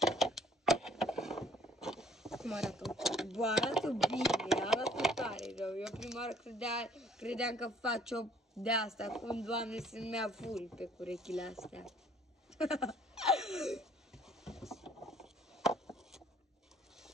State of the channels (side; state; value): both; normal; correlation 0.58